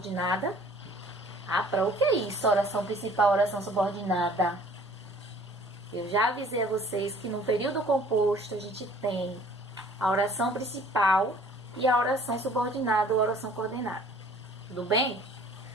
Para o que é isso? Oração principal, oração subordinada. Eu já avisei a vocês que no período composto a gente tem a oração principal e a oração subordinada ou oração coordenada. Tudo bem?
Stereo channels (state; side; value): normal; both; correlation 0.53